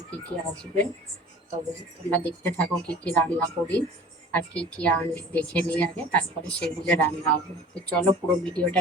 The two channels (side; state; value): both; normal; correlation 0.44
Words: কী কী আসবে। তবে তোমরা দেখতে থাকো কী কী রান্না করি আর কী কী আনি দেখে নিই আগে, তারপরে সেগুলো রান্না হবে। তো চলো, পুরো ভিডিওটা